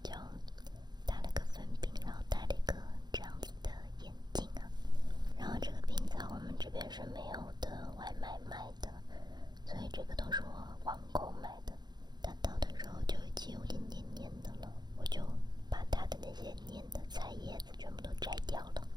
就打了个粉饼，然后戴了一个这样子的眼镜啊。然后这个冰在我们这边是没有的外卖卖的，所以这个都是我网购买的。它倒的时候就已经有点黏黏的了，我就把它的那些黏的菜叶子全部都摘掉了，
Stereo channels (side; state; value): left; late; 0.21 ms